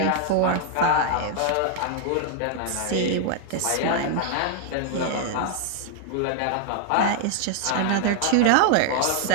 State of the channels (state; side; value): different; both; correlation 0.00